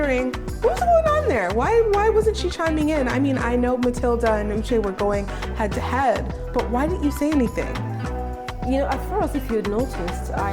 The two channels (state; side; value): identical; both; correlation 1.00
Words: what's going on there? Why wasn't she chiming in? I mean, I know Matilda and Uche were going head to head, but why didn't you say anything? You know, at first, if you noticed,